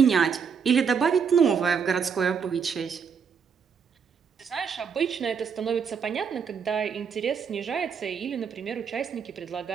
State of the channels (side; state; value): left; quieter; 6.5 dB